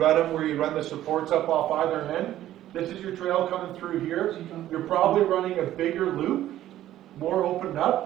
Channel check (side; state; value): left; quieter; 13.2 dB